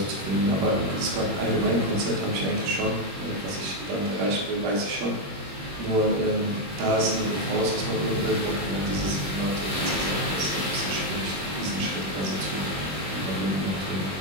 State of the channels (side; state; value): left; late; 21 ms